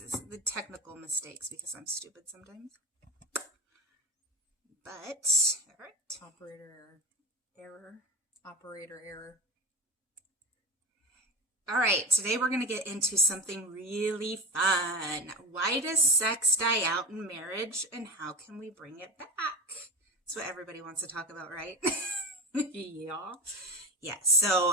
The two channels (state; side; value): normal; both; correlation 0.25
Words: the technical mistakes because I'm stupid sometimes. But, all right. Operator error. All right. Today we're going to get into something really fun. Why does sex die out in marriage and how can we bring it back? That's what everybody wants to talk about, right? Yeah. Yeah,